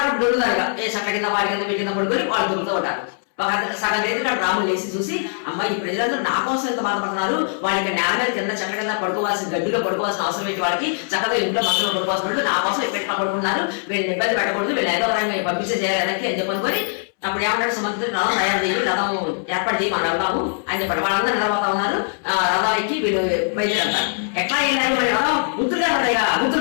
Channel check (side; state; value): right; silent; 65 dB below the other